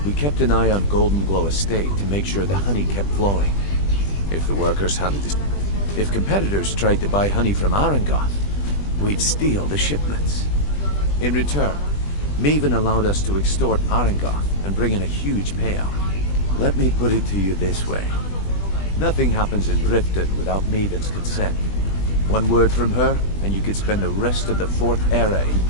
We kept an eye on Golden Glow Estate to make sure the honey kept flowing. If the workers handled this... If competitors tried to buy honey from Arangoth, we'd steal the shipments. In return, Maven allowed us to extort Arangoth and bring in a huge payout. Let me put it to you this way. Nothing happens in Riften without Maven's consent. One word from her, and you could spend the rest of the 4th era in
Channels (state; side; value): late; right; 20 ms